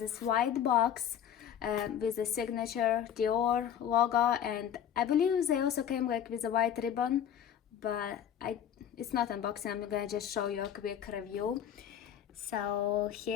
white box with the signature Dior logo, and I believe they also came like with a white ribbon, but it's not unboxing. I'm gonna just show you a quick review. So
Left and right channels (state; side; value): quieter; right; 9.4 dB